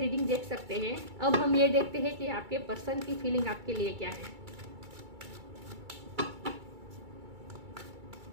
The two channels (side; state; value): left; late; 2.3 ms